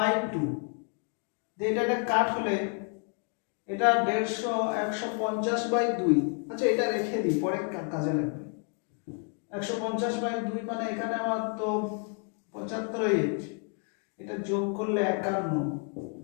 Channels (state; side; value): quieter; right; 39.2 dB